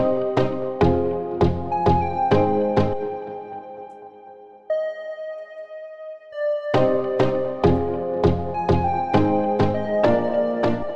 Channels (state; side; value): identical; both; correlation 1.00